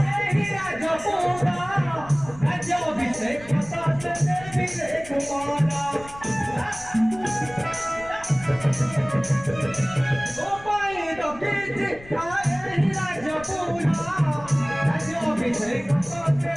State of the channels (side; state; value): left; noise; rumble, 19 dB below the sound